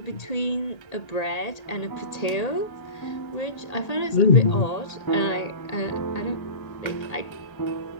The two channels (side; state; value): right; late; 1.8 ms